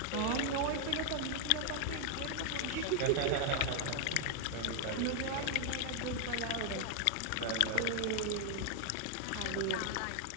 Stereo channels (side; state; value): both; different; correlation 0.00